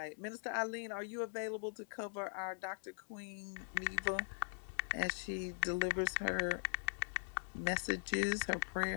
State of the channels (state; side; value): silent; right; digital silence